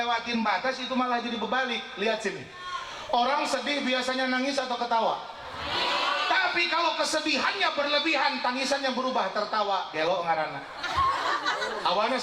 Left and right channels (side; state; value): both; identical; correlation 1.00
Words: batas itu malah jadi berbalik. Lihat sini, orang sedih biasanya nangis atau ketawa? Tapi kalau kesedihannya berlebihan, tangisannya berubah tertawa. Gelo ngaranna. Awalnya